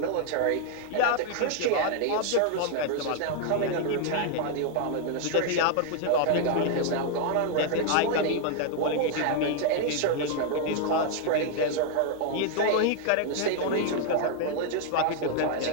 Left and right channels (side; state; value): both; different; correlation 0.00